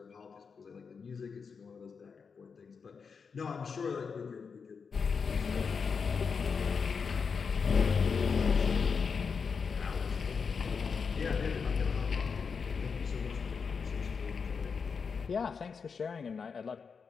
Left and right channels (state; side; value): quieter; right; 5.6 dB